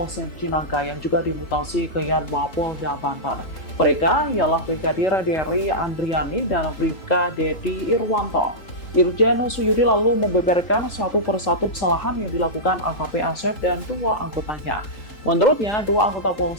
Cinangka yang juga dimutasi ke Yanma Polda Banten. Mereka ialah Brigadir Dery Andriani dan Bribka Dedi Irwanto. Irjen Suyudi lalu membeberkan satu persatu kesalahan yang dilakukan AKP Asep dan dua anggotanya. Menurutnya, dua anggota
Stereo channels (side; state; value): right; late; 3.8 ms